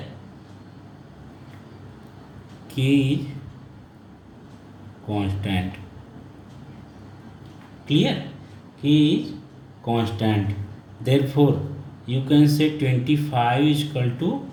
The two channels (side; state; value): both; identical; correlation 1.00